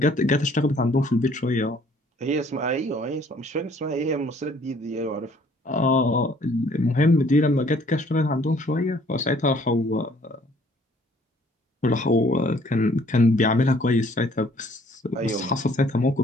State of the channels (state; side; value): normal; both; correlation 0.59